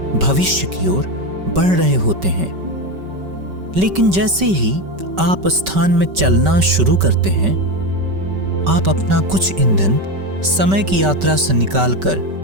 भविष्य की ओर बढ़ रहे होते हैं। लेकिन जैसे ही आप स्थान में चलना शुरू करते हैं, आप अपना कुछ ईंधन समय की यात्रा से निकालकर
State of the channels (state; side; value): late; left; 5.2 ms